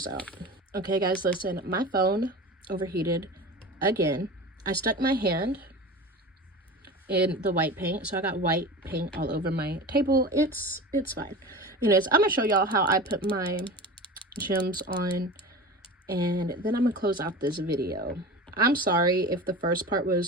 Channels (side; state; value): both; normal; correlation 0.32